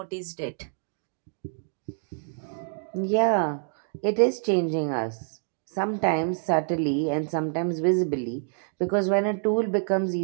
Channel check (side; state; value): left; silent; digital silence